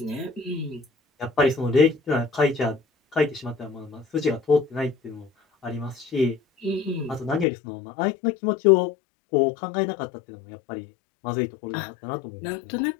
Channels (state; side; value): drops out; right; at 7.5 s